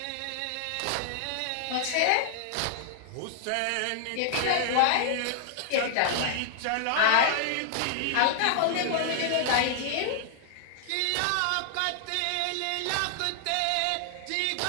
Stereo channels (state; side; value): different; both; correlation 0.00